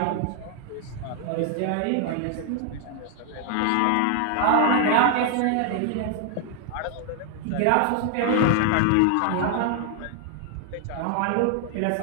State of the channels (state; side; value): different; both; correlation 0.00